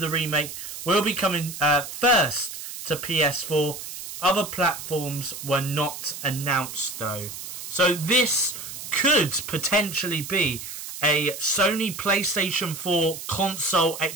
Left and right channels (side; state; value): right; noise; hiss, 9 dB below the sound